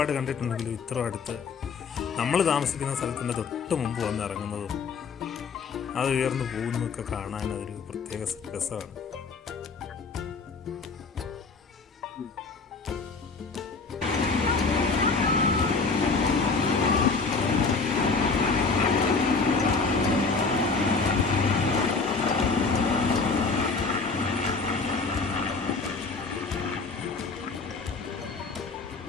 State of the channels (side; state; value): right; quieter; 4.5 dB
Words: കണ്ടിട്ടുണ്ടെങ്കിലും ഇത്ര അടുത്ത് നമ്മൾ താമസിക്കുന്ന സ്ഥലത്തിൻ്റെ തൊട്ട് മുമ്പ് വന്ന് ഇറങ്ങുന്നതും അത് ഉയർന്നു പോകുന്നതൊക്കെ കാണാൻ അതൊരു പ്രത്യേക രസമാണ്.